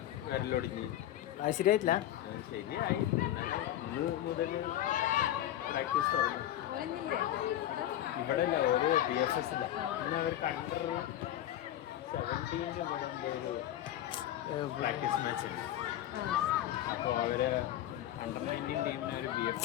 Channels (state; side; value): quieter; right; 12.6 dB